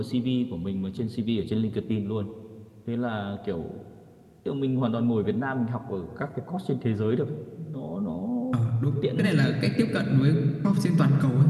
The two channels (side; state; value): both; identical; correlation 1.00